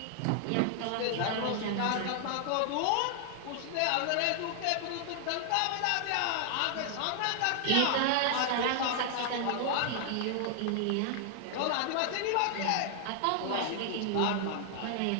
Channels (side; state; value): both; different; correlation 0.00